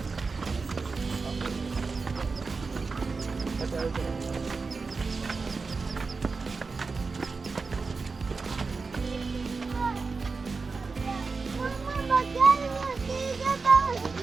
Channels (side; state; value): left; quieter; 4.4 dB